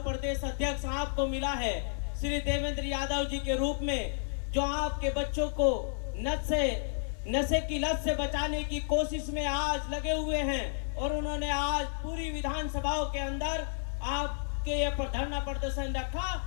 अध्यक्ष आपको मिला है श्री देवेंद्र यादव जी के रूप में, जो आपके बच्चों को नशे की लत से बचाने की कोशिश में आज लगे हुए हैं। और उन्होंने आज पूरी विधानसभाओं के अंदर आपके ये धरना प्रदर्शन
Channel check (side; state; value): right; silent; 57 dB below the other